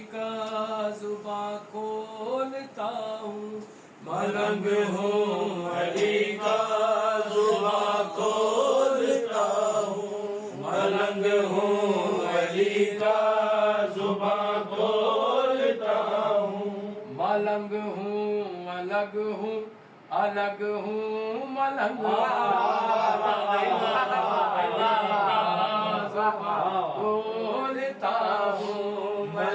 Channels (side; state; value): both; identical; correlation 1.00